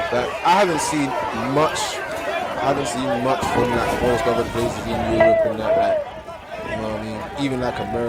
Like, I haven't seen much from like most other places in Europe and that, like, you know what I mean? Even like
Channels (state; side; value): identical; both; correlation 1.00